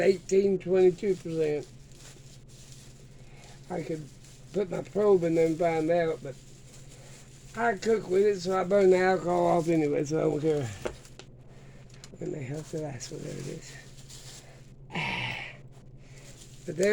22%. I could put my probe in there and find out, but I cook with it, so I burn the alcohol off anyway, so I don't care. When the hell's the last one? There it is. But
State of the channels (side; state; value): both; identical; correlation 1.00